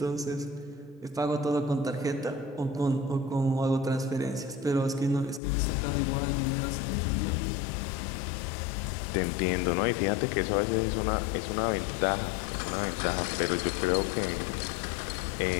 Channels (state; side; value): drops out; right; at 5.4 s